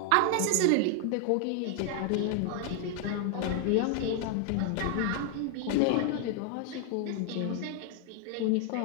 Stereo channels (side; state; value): both; different; correlation 0.00